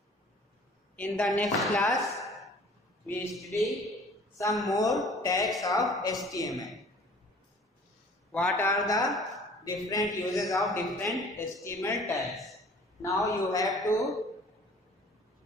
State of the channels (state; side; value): normal; both; correlation 0.50